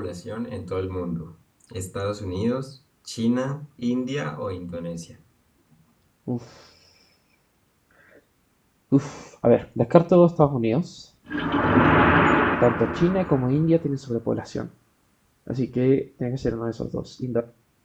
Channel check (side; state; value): both; identical; correlation 1.00